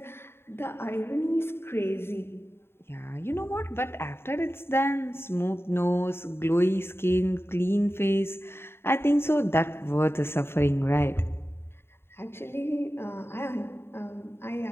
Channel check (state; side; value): late; right; 0.11 ms